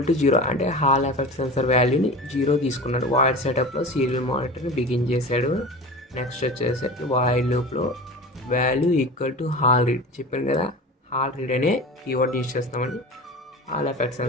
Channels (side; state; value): both; normal; correlation 0.33